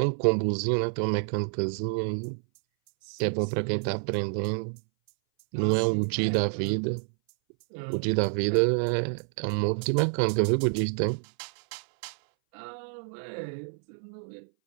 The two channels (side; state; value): left; silent; 59 dB below the other